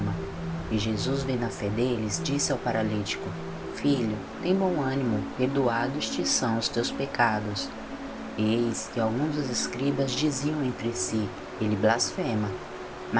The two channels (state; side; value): identical; both; correlation 1.00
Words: E Jesus, vendo a fé deles, disse ao paralítico: Filho, tem bom ânimo, perdoados te são os teus pecados. E eis que alguns dos escribas diziam entre si: Ele blasfema.